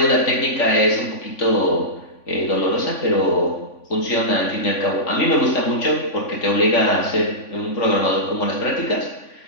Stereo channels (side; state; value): right; late; 3.5 ms